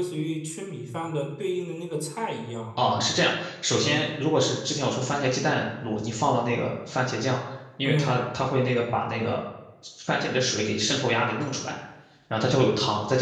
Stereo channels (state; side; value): identical; both; correlation 1.00